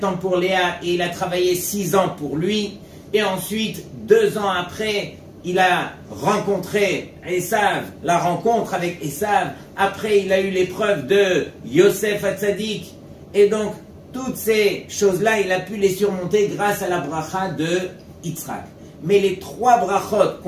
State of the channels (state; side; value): identical; both; correlation 1.00